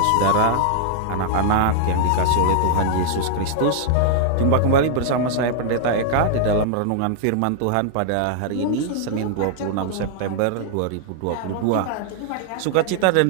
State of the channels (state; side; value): different; both; correlation -0.01